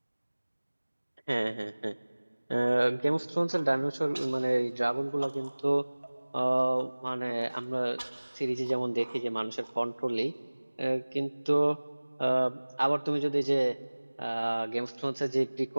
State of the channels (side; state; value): both; inverted; correlation -1.00